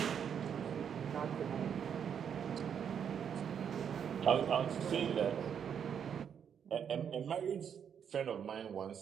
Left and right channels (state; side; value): quieter; left; 7.9 dB